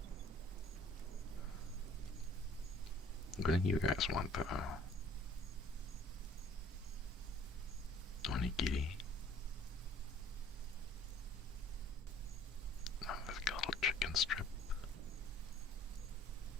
What do you guys want though? Onigiri? Oh, there's got a little chicken strip.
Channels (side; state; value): both; normal; correlation 0.55